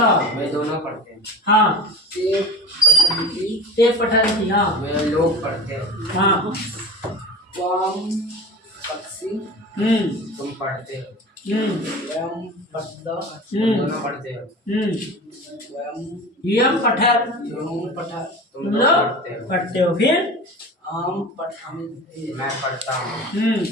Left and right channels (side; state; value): both; normal; correlation 0.35